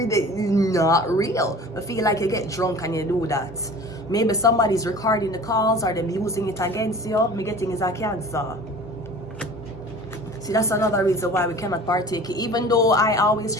that is not real. I feel like you get drunk and you do that. Maybe somebody's recording the calls or them using it against you. Me getting is a Cancer. See, that's another reason why we cannot partake, even though I always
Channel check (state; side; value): normal; both; correlation 0.42